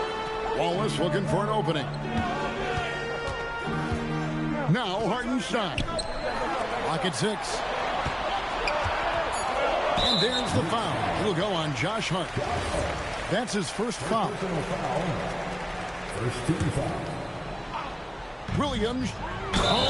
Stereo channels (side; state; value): both; identical; correlation 1.00